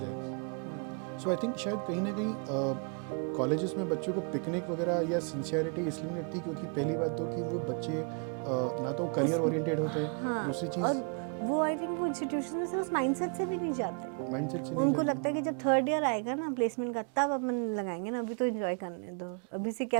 सो आई थिंक शायद कहीं ना कहीं कॉलेजेस में बच्चों को पिकनिक वगैरह या सिंसियरिटी इसलिए नहीं लगती क्योंकि पहली बात तो कि वो बच्चे ना तो करियर ओरिएंटेड होते हैं. हाँ, दूसरी चीज़ वो आई थिंक वो इंस्टीट्यूशन में से उस माइंडसेट से भी नहीं जाते, माइंडसेट से नहीं जाते. उनको लगता है कि जब थर्ड ईयर आएगा ना प्लेसमेंट का तब अपन लगाएंगे ना, अभी तो एंजॉय करने दो, अभी से क्या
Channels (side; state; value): left; quieter; 39.6 dB